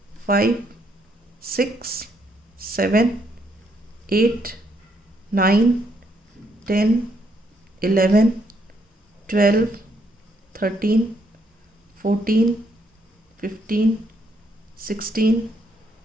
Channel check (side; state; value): both; normal; correlation 0.73